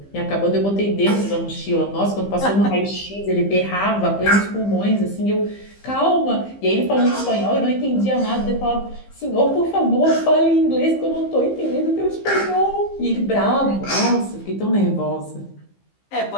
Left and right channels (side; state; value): right; late; 15 ms